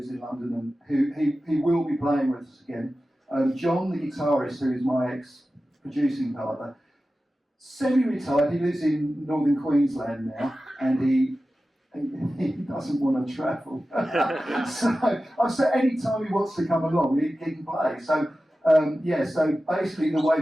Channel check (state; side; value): normal; both; correlation 0.94